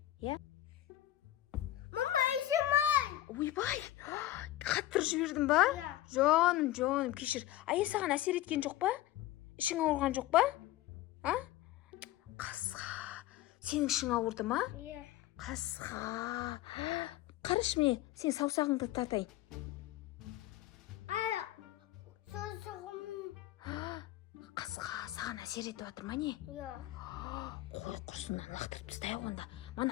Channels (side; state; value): right; quieter; 14.6 dB